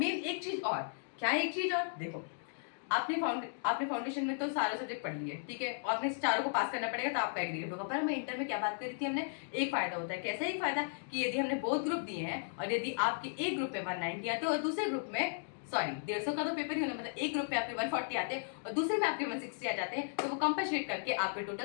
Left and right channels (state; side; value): silent; right; digital silence